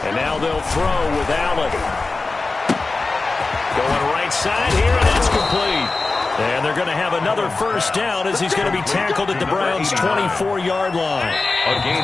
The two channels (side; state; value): right; quieter; 3.6 dB